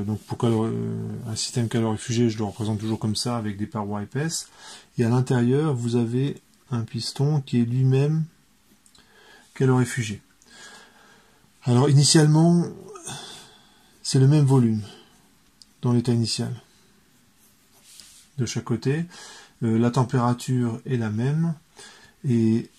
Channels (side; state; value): both; identical; correlation 1.00